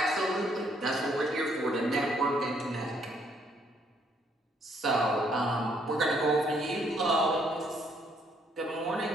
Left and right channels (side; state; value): both; normal; correlation 0.68